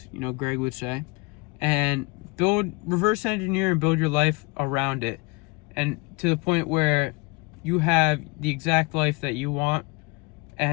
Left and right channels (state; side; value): quieter; right; 26.4 dB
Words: Greg would say, and reverse engineer and build your life around it, and to the point where you have the exact life that you want,